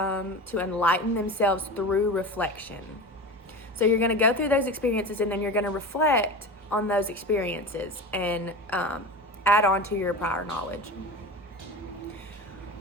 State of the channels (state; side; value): normal; both; correlation 0.30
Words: to enlighten themselves through reflection. So you're going to go through those experiences and then you're going to reflect on those experiences and add on to your prior knowledge.